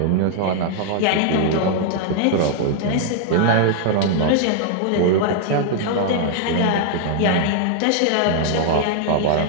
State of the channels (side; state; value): both; different; correlation 0.00